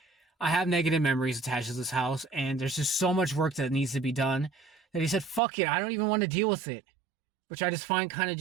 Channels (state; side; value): drops out; left; at 5.4 s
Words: I have negative memories attached to this house, and there's just so much work that needs to be done, that he said, fuck it, I don't even want to deal with it. Which I just find kind of